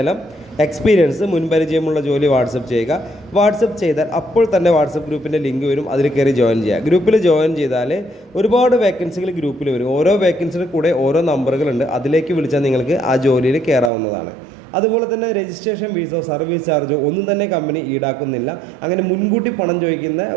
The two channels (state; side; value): drops out; left; at 13.9 s